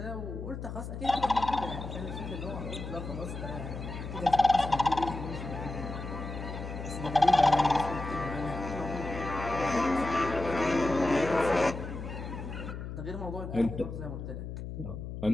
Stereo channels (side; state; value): left; noise; hum, 7 dB below the sound